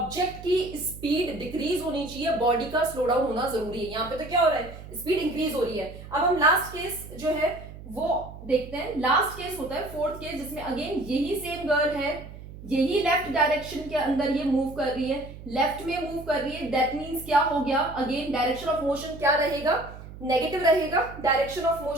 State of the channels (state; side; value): noise; right; hum, 14 dB below the sound